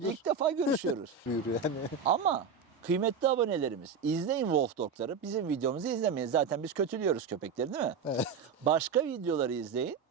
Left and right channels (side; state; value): left; quieter; 5.8 dB